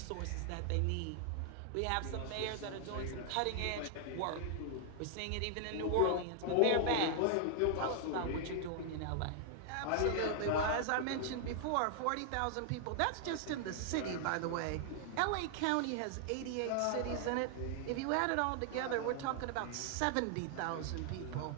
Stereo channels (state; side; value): different; both; correlation 0.00